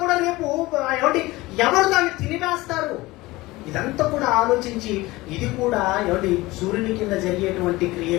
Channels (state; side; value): quieter; right; 20.1 dB